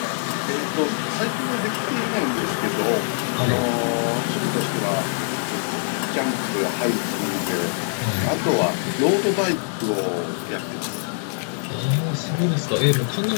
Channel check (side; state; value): right; silent; digital silence